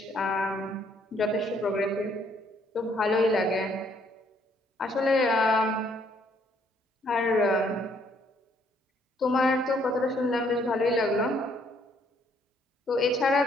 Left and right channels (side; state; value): both; normal; correlation 0.67